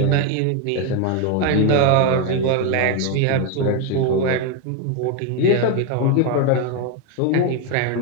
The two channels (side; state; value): both; different; correlation 0.02